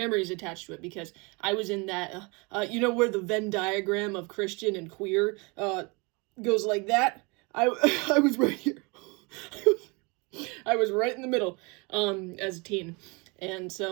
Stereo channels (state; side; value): quieter; left; 28.9 dB